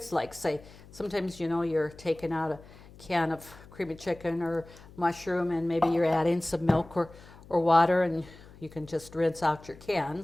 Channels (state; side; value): noise; left; hum, 21 dB below the sound